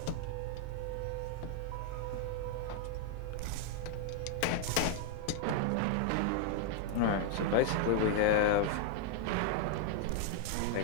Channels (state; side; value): different; both; correlation 0.00